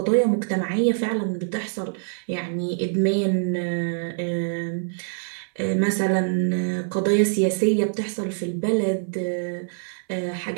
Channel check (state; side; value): silent; left; 62 dB below the other